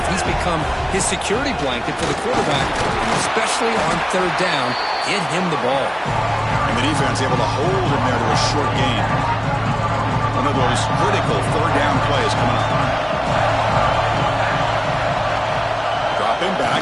He's become his security blanket for the quarterback, and especially on third down, get him the ball. And the defense able to hold him there to a short gain. One of those critical third down plays coming up. Dropping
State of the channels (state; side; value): identical; both; correlation 1.00